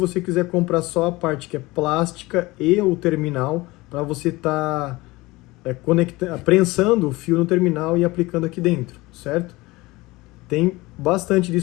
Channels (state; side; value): quieter; right; 21.2 dB